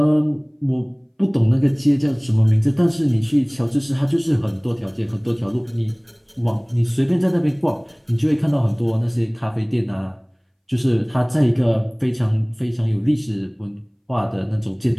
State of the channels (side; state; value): both; identical; correlation 1.00